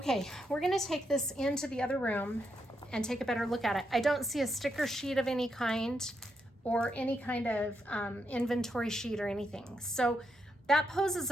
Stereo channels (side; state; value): both; normal; correlation 0.81